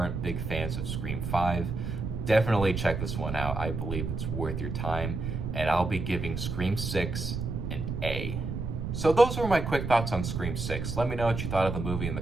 big fans of Scream 5. Definitely check this one out. I believe it's worth your time, and I'll be giving Scream 6 an A. So those were my quick thoughts on Scream 6. Let me know what you thought of the movie in the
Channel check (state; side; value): noise; right; rumble, 4 dB below the sound